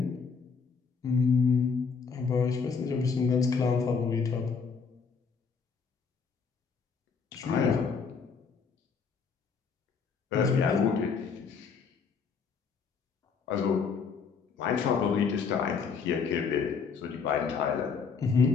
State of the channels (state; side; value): quieter; right; 5.6 dB